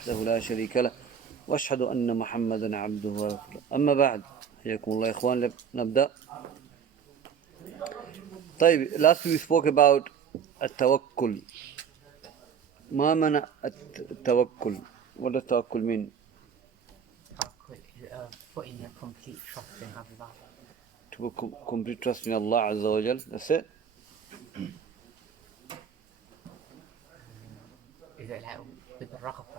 لا شريك له وأشهد أن محمدا عبده ورسوله أما بعد حياكم الله يا إخوان نبدأ. طيب, last we spoke about التوكل. ما معنى التوكل? What does التوكل mean? Putting a complete trust in Allah. To put complete trust in Allah Azza wa Jal. That's it. Is it like with the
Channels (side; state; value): left; quieter; 7.3 dB